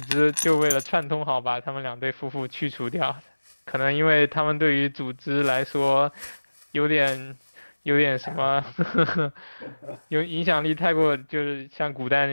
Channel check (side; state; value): both; inverted; correlation -1.00